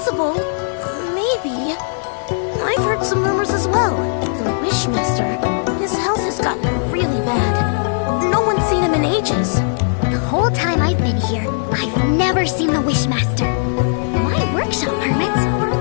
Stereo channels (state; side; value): silent; right; digital silence